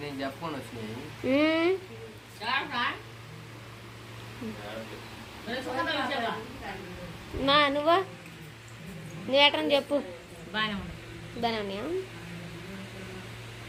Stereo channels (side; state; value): both; identical; correlation 1.00